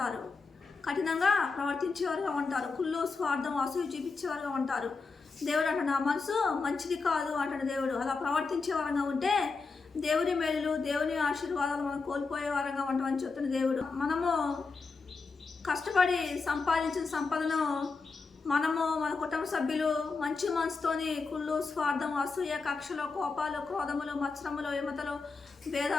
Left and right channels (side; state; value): right; quieter; 4.4 dB